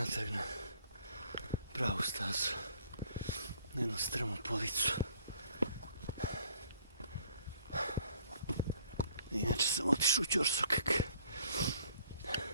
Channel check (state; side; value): inverted; both; correlation -0.60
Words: na pravu stazu. Na jednu strmu policu. Inače sam otišao u ćorsokak.